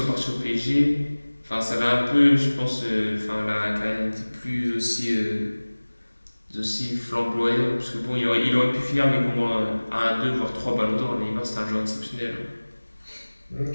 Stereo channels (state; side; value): inverted; both; correlation -1.00